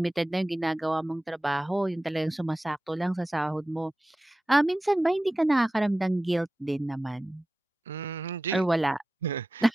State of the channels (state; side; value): normal; both; correlation 0.94